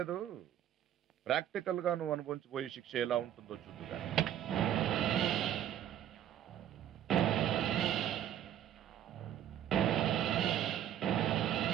ప్రాక్టికల్ గా నువ్వు అనుభవించిపోయే శిక్ష ఎలా ఉంటుందో చూద్దుగా.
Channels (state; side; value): quieter; left; 10.8 dB